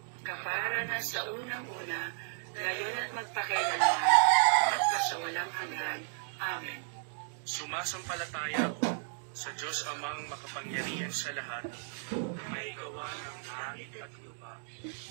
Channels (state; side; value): silent; left; digital silence